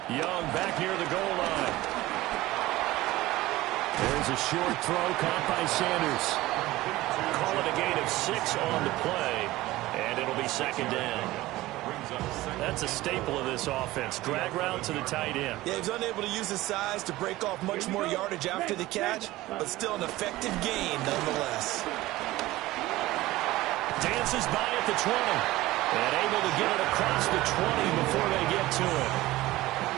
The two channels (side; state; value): left; quieter; 17.7 dB